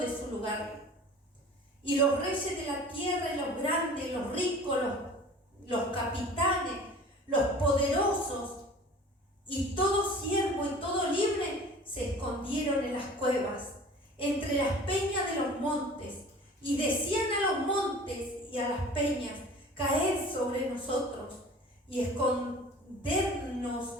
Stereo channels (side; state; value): both; normal; correlation 0.43